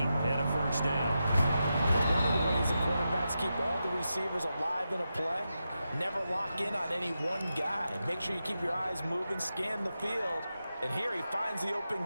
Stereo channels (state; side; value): inverted; both; correlation -0.89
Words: and a first down. One of the ways that quarterbacks keep all the receivers alive in a play, never lock in on any one guy. Make sure you keep your eyes moving, scan the field, and here he finds the open